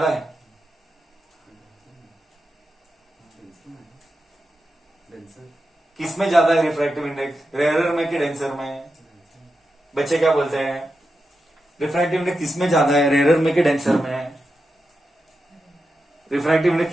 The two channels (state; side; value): normal; both; correlation 0.89